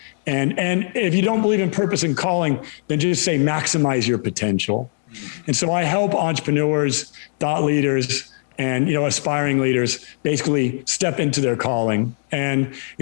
And if you don't believe in purpose and calling, then just say maximize your potential. And so I help entrepreneurs, thought leaders, and aspiring leaders basically step into their calling. And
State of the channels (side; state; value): right; silent; digital silence